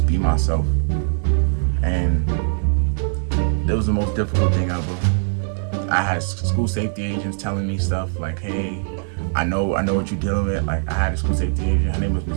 be myself. And that was the most difficult thing ever. I had school safety agents telling me stuff like, hey, I know what you're dealing with. Like, I had a school safety agent, her name was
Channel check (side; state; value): left; silent; digital silence